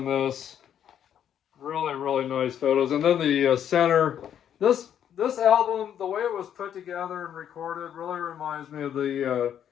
this. Really, really nice photos. And then the center, this album, the way it was put together and recorded, really reminds me of the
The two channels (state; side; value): quieter; right; 9.5 dB